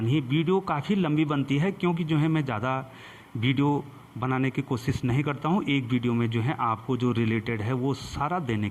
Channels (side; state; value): both; identical; correlation 1.00